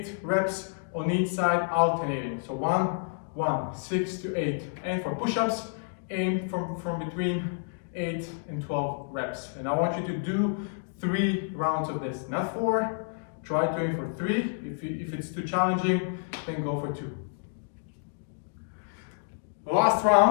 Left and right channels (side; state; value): right; silent; digital silence